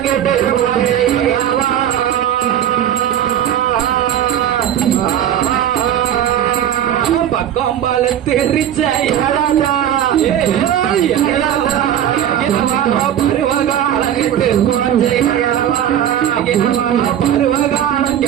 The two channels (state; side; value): quieter; left; 10.4 dB